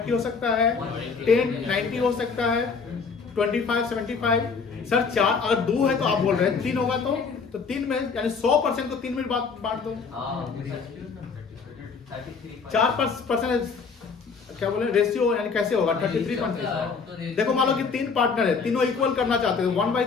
हो सकता है, 10-90 हो सकता है, 25-75। सर 4 अगर 2 है तो आप बोल रहे हैं 3 होगा तो 3 में यानी 100% को 3 में बांट दो। 4% क्या बोले रेशियो, यानी कैसे होगा? 33%। देखो मान लो कि 3 पार्टनर है, तीनों इक्वल करना चाहते हो,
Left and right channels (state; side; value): quieter; right; 5.3 dB